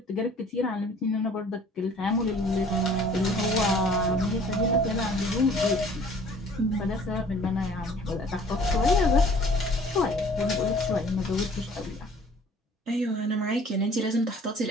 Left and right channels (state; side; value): normal; both; correlation 0.53